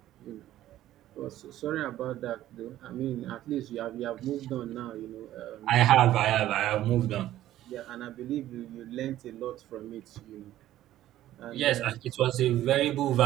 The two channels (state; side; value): quieter; left; 13.6 dB